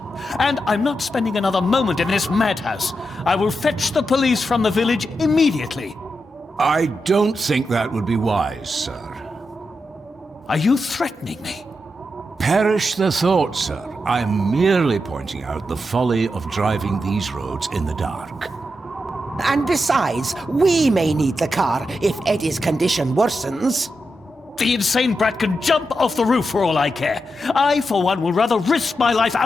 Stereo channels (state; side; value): normal; both; correlation 0.87